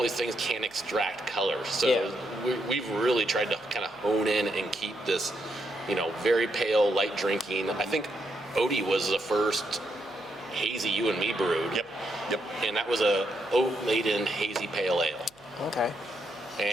these things can extract color. So Yeah. we've really tried to kind of hone in and keep this, very pale, light drinking. I think Odie was the first hazy you and me brewed. Yep. And that was a oat-laden hazy pale ale. Okay.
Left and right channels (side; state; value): right; noise; hum, 29 dB below the sound